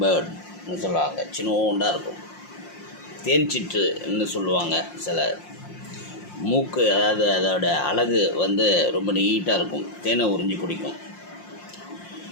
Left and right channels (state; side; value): late; right; 5.6 ms